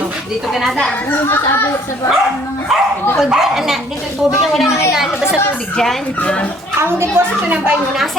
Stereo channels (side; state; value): both; normal; correlation 0.59